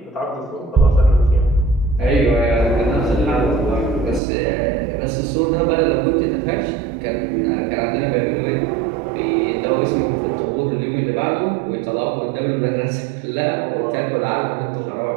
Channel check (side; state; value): left; drops out; at 4.2 s